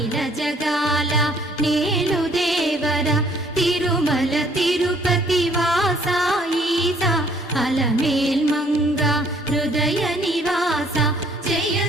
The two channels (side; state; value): both; normal; correlation 0.61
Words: జగాల నేలు దేవర తిరుమల తిరుపతి వాస ఈసా అలమేల్ మంగ హృదయ నివాస జయ